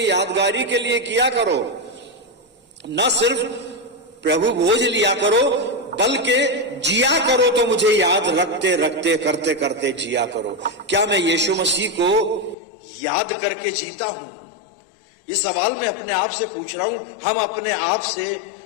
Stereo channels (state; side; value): drops out; right; at 12.6 s